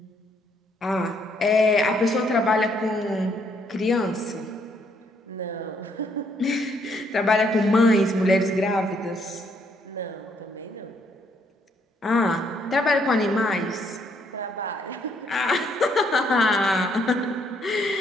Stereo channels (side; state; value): both; normal; correlation 0.70